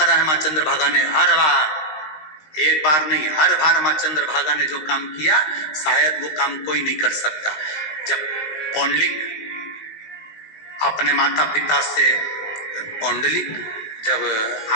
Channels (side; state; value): right; late; 19 ms